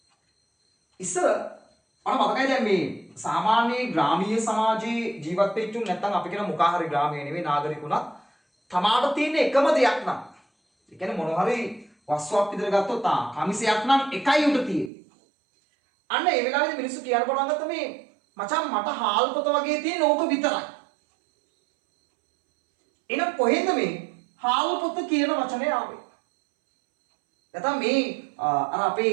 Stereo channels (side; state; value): left; drops out; at 14.9 s